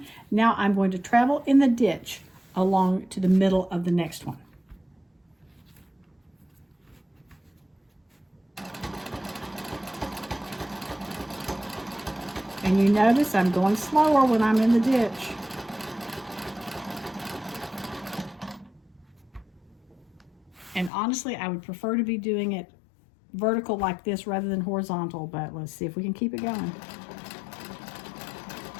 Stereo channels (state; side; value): drops out; right; at 20.9 s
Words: Now I'm going to travel in the ditch along to the middle of the next one. And you notice I'm going slower when I'm in the ditch. And honestly, I would prefer to be doing it vertical like this rather than horizontal, but let's see if we can keep it going.